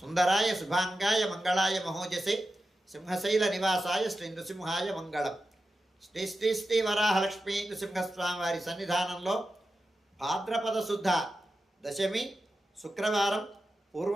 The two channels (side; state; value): both; normal; correlation 0.91